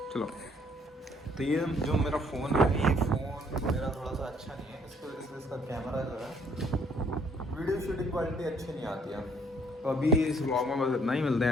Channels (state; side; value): normal; both; correlation 0.63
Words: चलो, तो ये जो मेरा फ़ोन है, ये फ़ोन मेरा थोड़ा सा अच्छा नहीं है, इसको इसका कैमरा जो है वीडियो शूटिंग क्वालिटी अच्छी नहीं आती है। तो अभी इस व्लॉग में बस इतना ही, मिलते हैं